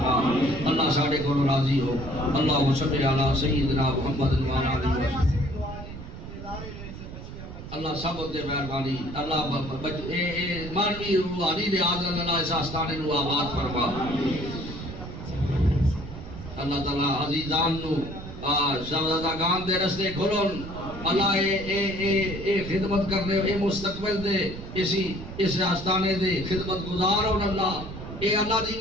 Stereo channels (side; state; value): right; noise; rumble, 11 dB below the sound